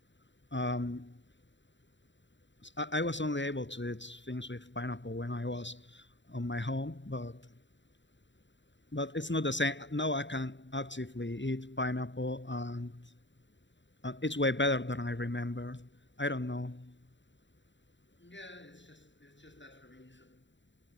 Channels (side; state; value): right; late; 0.53 ms